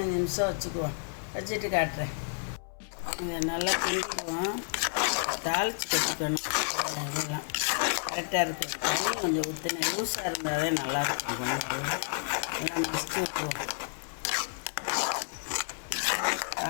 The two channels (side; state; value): right; silent; 57 dB below the other